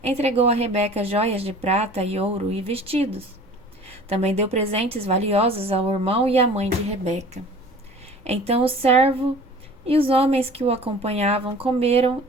entregou a Rebeca joias de prata e ouro e vestidos. Também deu presentes valiosos ao irmão e à mãe de Rebeca. Então o servo e os homens que o acompanhavam comeram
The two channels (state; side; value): normal; both; correlation 0.45